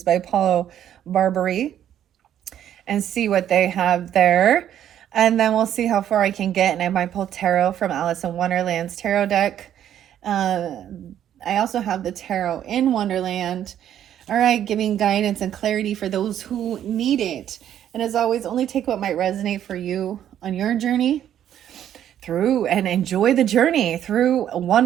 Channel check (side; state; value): left; quieter; 10.6 dB